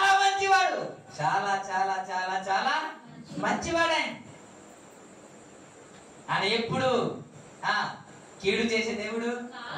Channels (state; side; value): identical; both; correlation 1.00